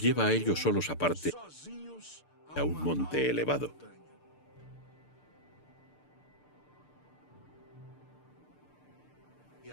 lleva a ellos solos aparte a un monte elevado.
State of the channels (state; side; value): late; right; 6.7 ms